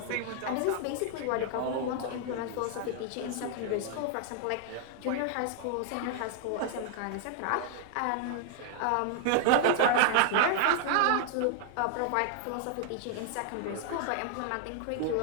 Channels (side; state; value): both; different; correlation 0.00